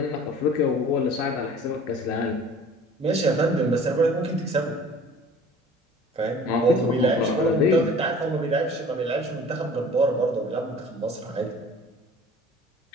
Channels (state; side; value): normal; both; correlation 0.47